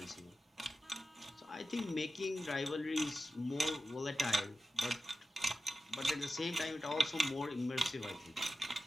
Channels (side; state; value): both; normal; correlation 0.93